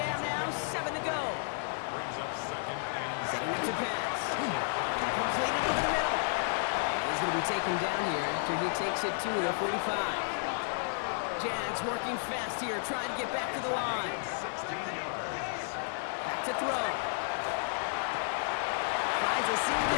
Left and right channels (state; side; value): silent; right; digital silence